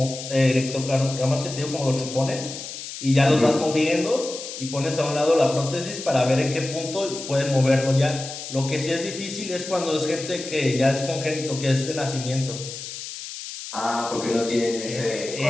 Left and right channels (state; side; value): noise; left; hiss, 10 dB below the sound